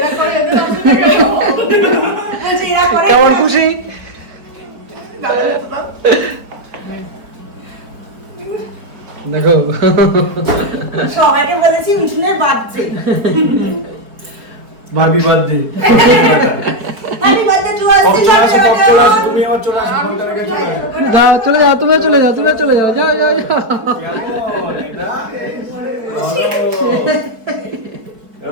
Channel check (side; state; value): left; late; 4.6 ms